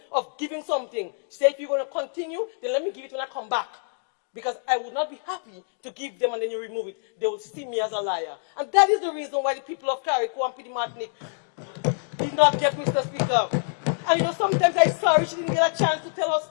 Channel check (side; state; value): right; silent; 61 dB below the other